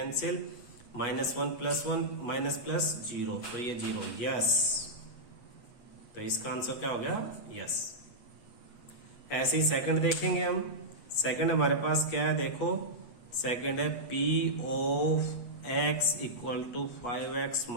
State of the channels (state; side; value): late; right; 8.3 ms